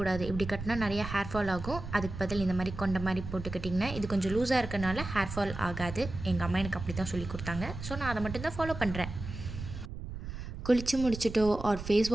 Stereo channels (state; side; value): noise; right; rumble, 9 dB below the sound